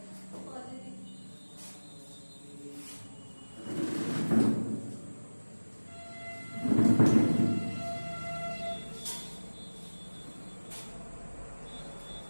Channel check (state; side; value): inverted; both; correlation -1.00